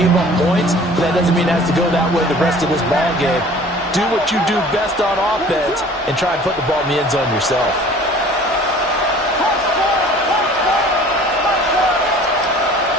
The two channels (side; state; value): both; normal; correlation 0.48